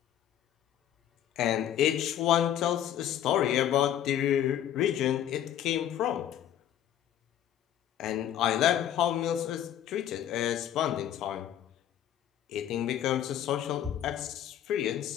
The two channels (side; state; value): right; quieter; 10.8 dB